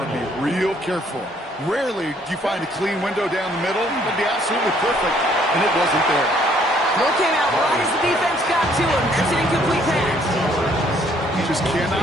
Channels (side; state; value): both; normal; correlation 0.64